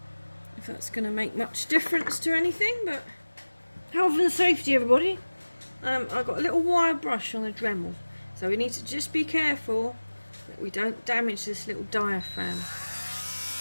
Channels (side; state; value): both; inverted; correlation -1.00